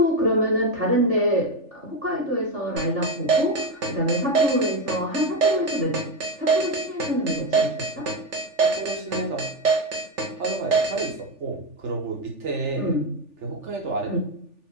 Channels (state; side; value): late; left; 3.4 ms